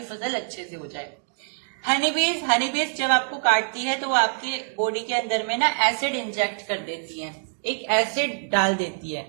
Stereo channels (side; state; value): left; silent; digital silence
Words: फसल अच्छे से हो जाए। हनी बीज जब आपको काटती है तो वो आपकी बॉडी के अंदर में ना एसिड इंजेक्ट कर देती है, एक एसिड डाल देती है,